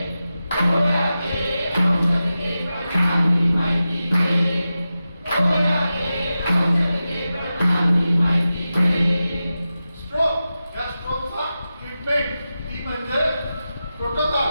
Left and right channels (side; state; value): both; inverted; correlation -0.93